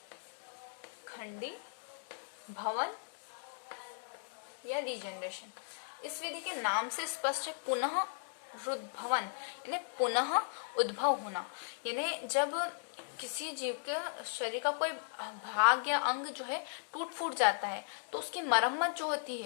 खंडी भवन या रीजनरेशन। इस विधि के नाम से स्पष्ट है पुनः रुद्भवन, यानी पुनः उद्भव होना। यानी जब किसी जीव के शरीर का कोई भाग या अंग जो है टूट फूट जाता है तो उसकी मरम्मत जो होती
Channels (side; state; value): right; silent; digital silence